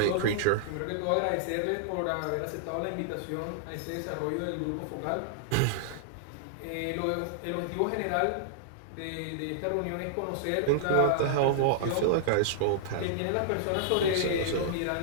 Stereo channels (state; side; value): different; both; correlation -0.01